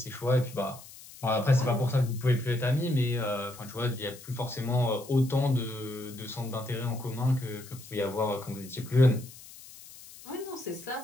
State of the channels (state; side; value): noise; left; hiss, 18 dB below the sound